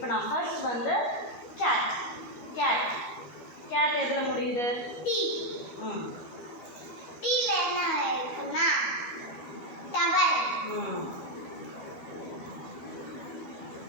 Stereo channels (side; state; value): right; late; 13 ms